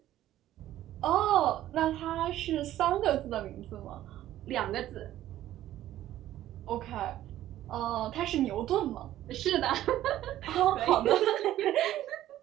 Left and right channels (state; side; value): quieter; left; 13.4 dB